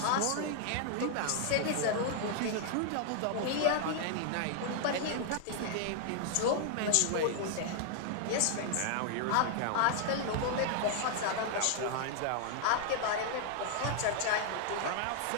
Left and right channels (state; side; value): different; both; correlation -0.01